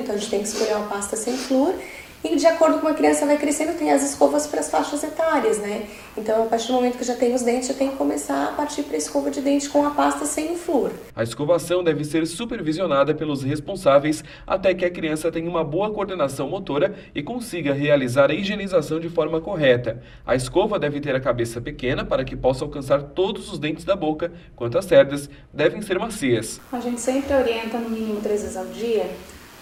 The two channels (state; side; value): identical; both; correlation 1.00